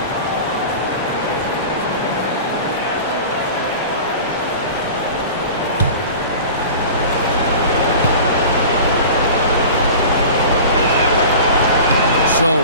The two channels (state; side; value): inverted; both; correlation -0.37